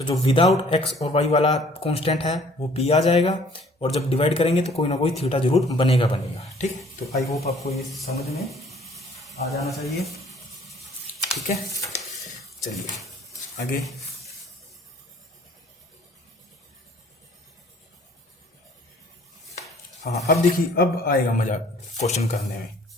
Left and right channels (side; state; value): both; normal; correlation 0.55